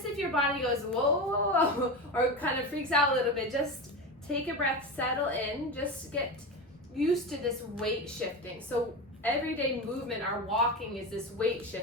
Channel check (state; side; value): normal; both; correlation 0.22